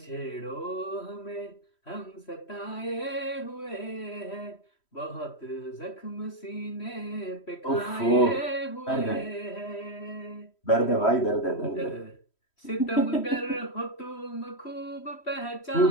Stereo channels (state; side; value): late; right; 3.1 ms